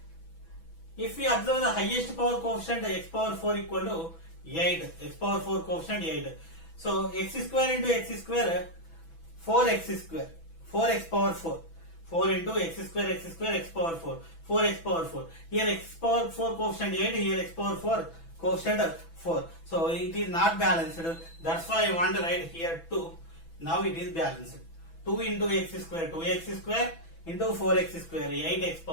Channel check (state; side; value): late; right; 6.1 ms